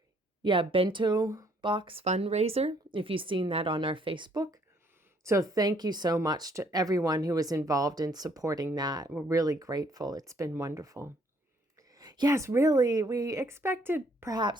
Yeah, bento box fundraiser, if you've seen that on our Facebook. So thank you so much to everyone who was involved in supporting that. We're really grateful. It's been wonderful. Yes, really, we expected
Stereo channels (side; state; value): both; normal; correlation 0.65